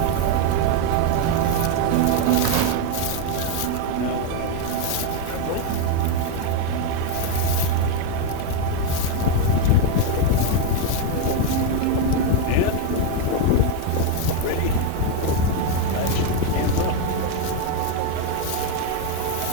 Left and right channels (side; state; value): both; different; correlation 0.01